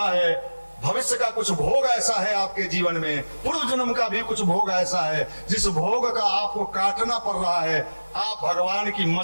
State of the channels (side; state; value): both; inverted; correlation -1.00